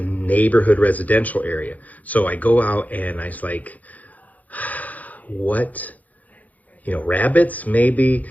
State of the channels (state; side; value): late; right; 0.077 ms